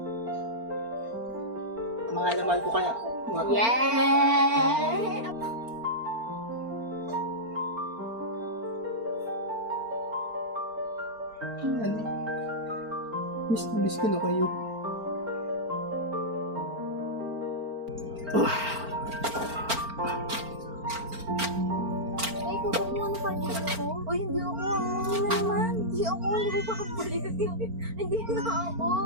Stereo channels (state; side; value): late; left; 4.4 ms